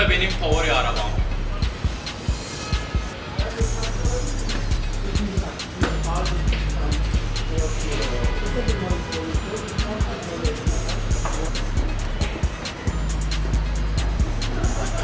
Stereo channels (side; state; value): both; identical; correlation 1.00